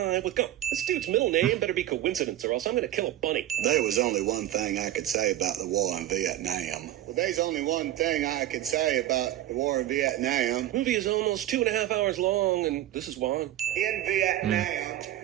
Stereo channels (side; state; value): left; quieter; 13.2 dB